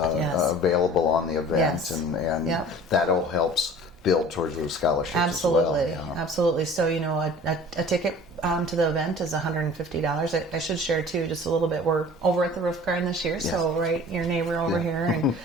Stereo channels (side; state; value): both; normal; correlation 0.45